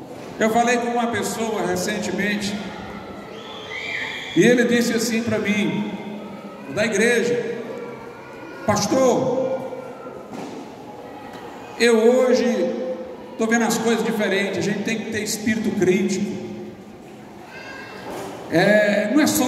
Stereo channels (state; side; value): identical; both; correlation 1.00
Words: Eu falei com uma pessoa recentemente, e ele disse assim para mim, da igreja: pastor, eu hoje estou vendo as coisas diferentes, a gente tem que ter espírito crítico. Não é